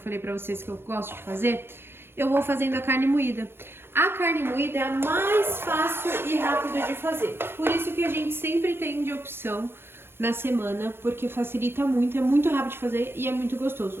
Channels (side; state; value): left; late; 0.11 ms